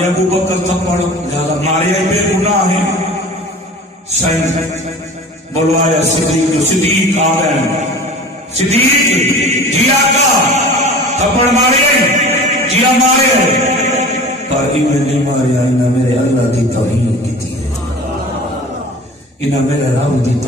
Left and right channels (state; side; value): normal; both; correlation 0.40